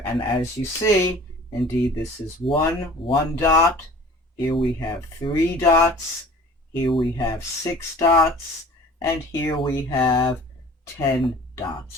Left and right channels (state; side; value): normal; both; correlation 0.46